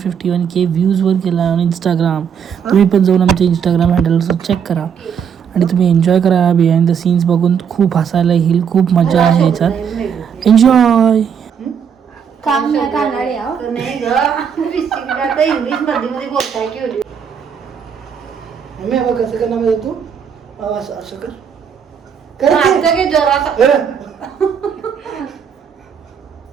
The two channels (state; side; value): quieter; left; 7.4 dB